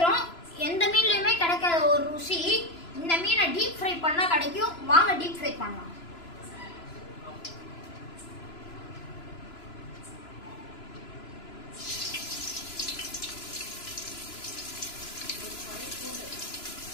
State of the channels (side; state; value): right; late; 3.0 ms